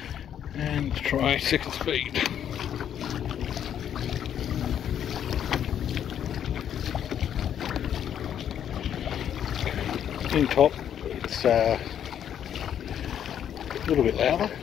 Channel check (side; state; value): right; quieter; 9.5 dB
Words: and try second speed. In top, it's a little bit louder.